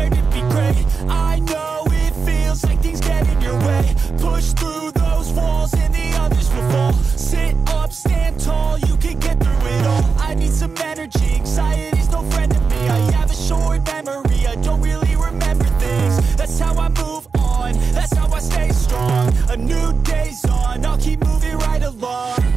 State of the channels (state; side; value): quieter; left; 5.1 dB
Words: to be great. I know it feels like things get in your way. Push through those walls and the others will fall. Sit up, stand tall, you can get through it all. I need some energy, anxiety's no friend to me. I have a short memory, I don't really remember things. That's how I move on, that's how I stay strong. A new day's on, I'll keep moving right along.